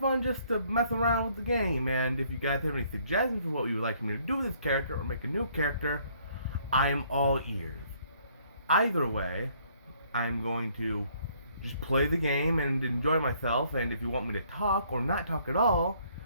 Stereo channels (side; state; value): both; inverted; correlation -0.64